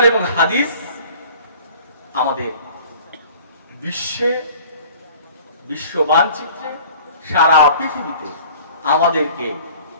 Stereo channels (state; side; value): inverted; both; correlation -0.47